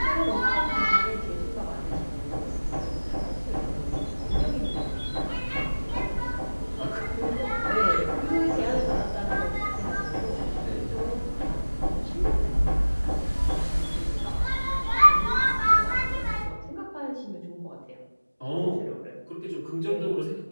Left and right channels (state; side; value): inverted; both; correlation -1.00